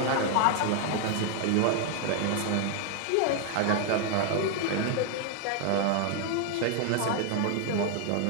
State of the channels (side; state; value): both; different; correlation 0.00